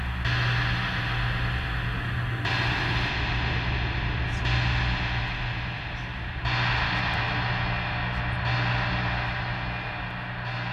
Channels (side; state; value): both; identical; correlation 1.00